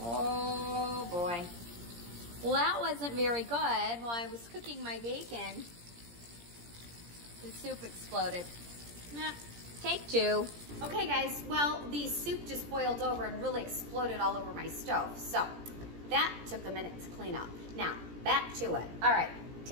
boy. Well, that wasn't very good. While I was cooking my bacon, the soup exploded. Nah, take 2. Okay guys, well, the soup just boiled over and really exploded all over my stove. So that took a minute to clean up. Now, back to it. All right,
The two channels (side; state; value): left; late; 17 ms